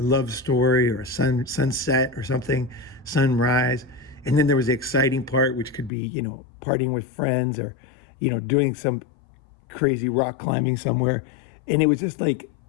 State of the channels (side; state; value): right; drops out; at 5.9 s